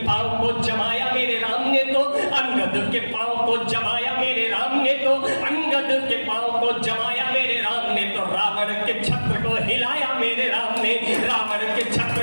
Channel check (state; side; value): inverted; both; correlation -1.00